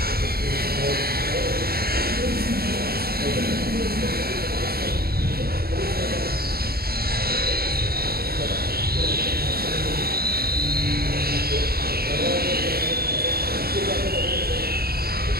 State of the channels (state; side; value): late; left; 0.45 ms